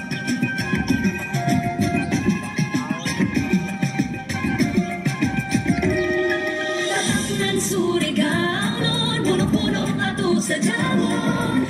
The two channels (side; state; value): both; identical; correlation 1.00